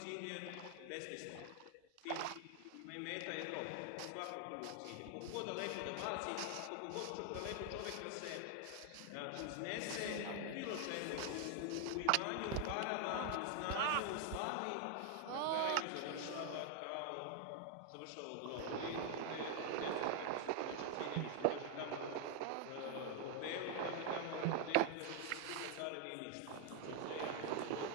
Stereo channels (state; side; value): different; both; correlation 0.00